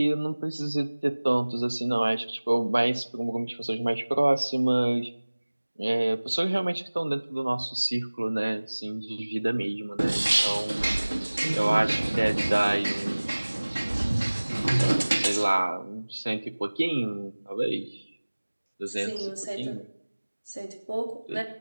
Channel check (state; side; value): inverted; both; correlation -1.00